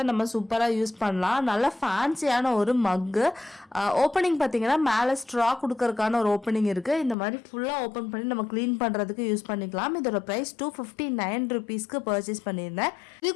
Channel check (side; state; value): right; drops out; at 7.2 s